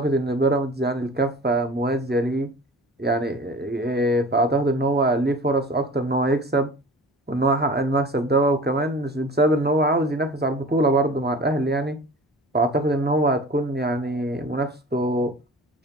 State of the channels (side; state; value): both; normal; correlation 0.40